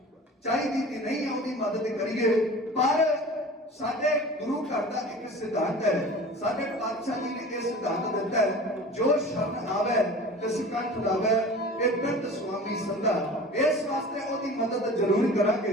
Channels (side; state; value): both; normal; correlation 0.39